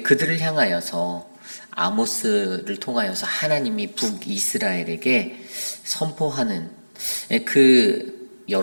그들을 향하여서 아모스를 통하여서 하나님이 북이스라엘에게 선포하는 그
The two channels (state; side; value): inverted; both; correlation -1.00